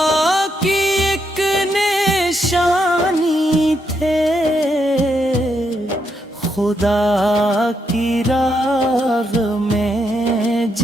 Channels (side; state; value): both; normal; correlation 0.79